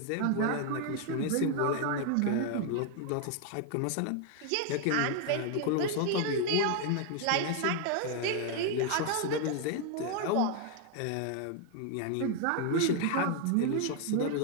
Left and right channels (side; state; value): both; different; correlation 0.01